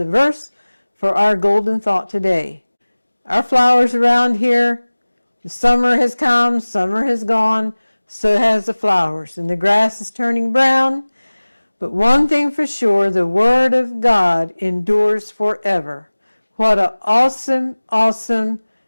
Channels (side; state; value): both; inverted; correlation -1.00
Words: verse for our golden thought today. Our flowers around here, the summer has come, summer has gone, so has the flowers. And the grass is turning brown. But one thing for sure, the word of God endures forever. What an awesome, awesome